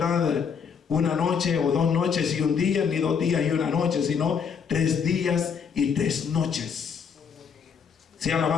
1 noche o 2 noches y 1 día, ni 2 días y 1 noche, sino 3 días y 3 noches. Sea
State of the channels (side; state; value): right; quieter; 6.6 dB